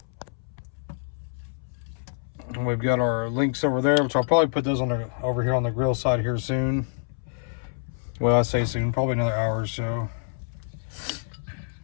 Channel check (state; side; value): silent; right; 60 dB below the other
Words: And we've got our links over there, which I'll probably put those on the, over here on the grill side here soon. Well, I say soon, probably another hour or so.